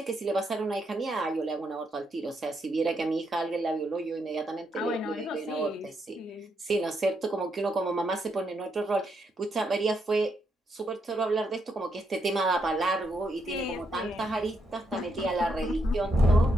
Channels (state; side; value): normal; both; correlation 0.79